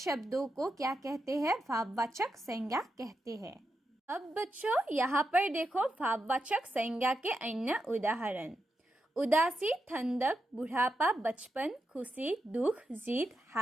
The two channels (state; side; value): normal; both; correlation 0.86